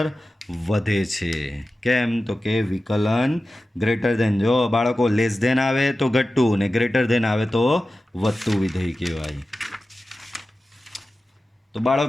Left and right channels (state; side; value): normal; both; correlation 0.94